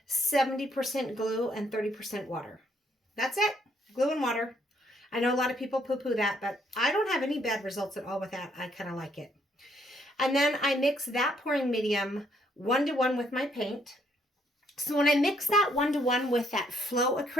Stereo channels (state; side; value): normal; both; correlation 0.69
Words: 70% glue and 30% water. That's it. Glue and water. I know a lot of people poo-poo that, but I don't have any bad results at all with that. I kind of like it. And then I mix that pouring medium 1-to-1 with my paint. So when I mix that 1-to-1 with that flow